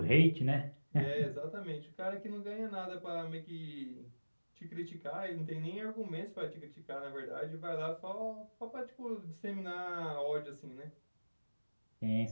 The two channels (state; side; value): inverted; both; correlation -1.00